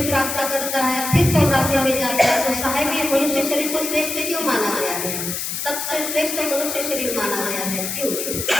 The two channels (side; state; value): left; noise; hiss, 3 dB below the sound